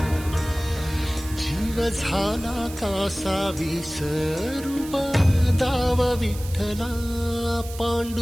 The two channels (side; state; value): right; noise; hiss, 15 dB below the sound